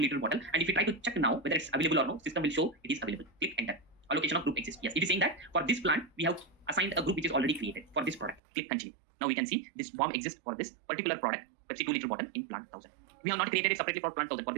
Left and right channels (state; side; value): drops out; left; at 8.4 s